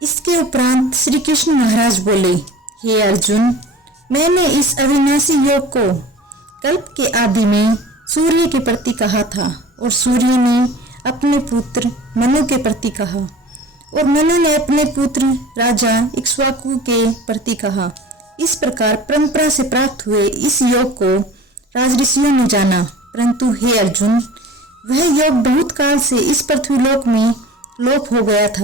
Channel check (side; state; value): both; normal; correlation 0.42